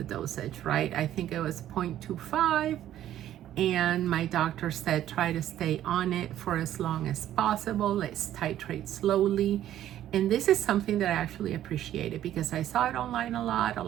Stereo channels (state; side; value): quieter; left; 12.1 dB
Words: dosage, right? I think it was 0.25, and my doctor said try to stay on it for as long as possible. Let's titrate slowly. And this is something that I actually appreciated, because I saw it online a lot